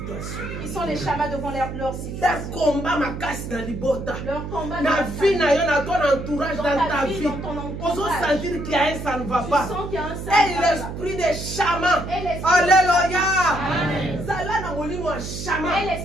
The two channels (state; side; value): noise; right; hum, 7 dB below the sound